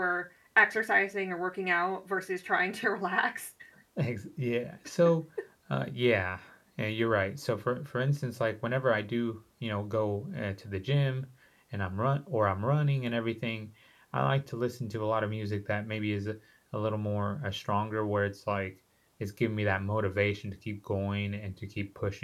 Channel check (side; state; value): both; identical; correlation 1.00